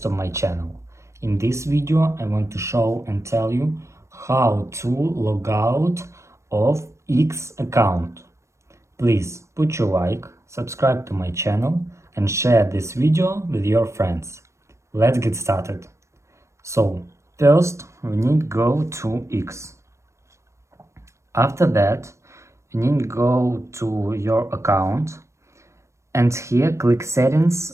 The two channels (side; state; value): left; late; 0.14 ms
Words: of my channel. In this video I want to show and tell you how to log out of X account. Please put your like, subscribe to my channel and share this video with your friends. Let's get started. So first we need to go to X. After that you need to go to your account. And here click